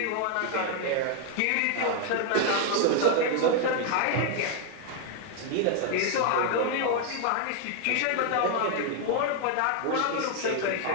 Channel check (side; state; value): both; different; correlation 0.01